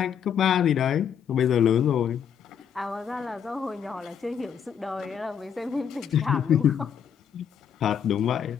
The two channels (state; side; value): quieter; right; 8.1 dB